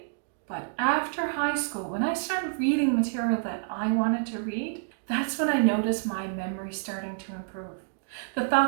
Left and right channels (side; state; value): left; silent; digital silence